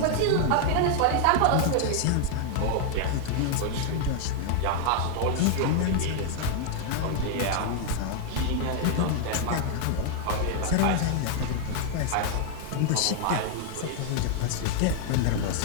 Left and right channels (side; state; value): both; different; correlation 0.00